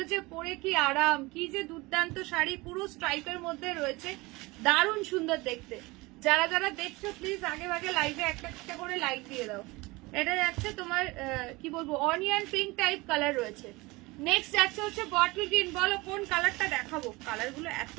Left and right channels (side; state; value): left; quieter; 22.9 dB